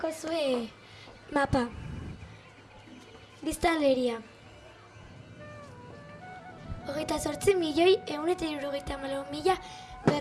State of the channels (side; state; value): both; identical; correlation 1.00